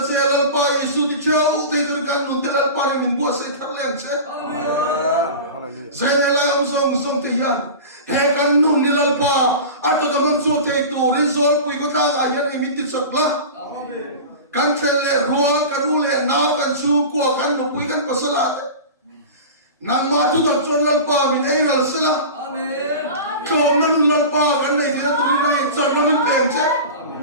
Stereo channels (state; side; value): inverted; both; correlation -0.31